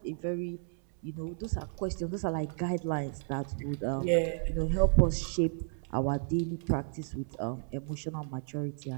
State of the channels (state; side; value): silent; left; 56 dB below the other